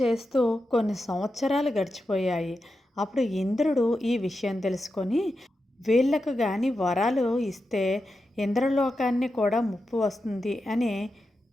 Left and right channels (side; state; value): both; normal; correlation 0.89